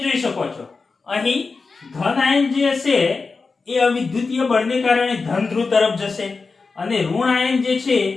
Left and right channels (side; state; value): right; quieter; 4.3 dB